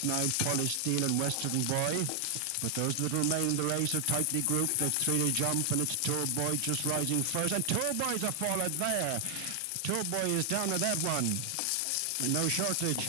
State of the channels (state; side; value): different; both; correlation 0.00